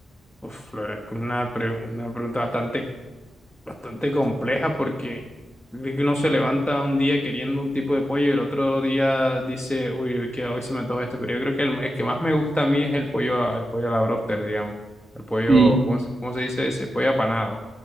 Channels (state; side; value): normal; both; correlation 0.90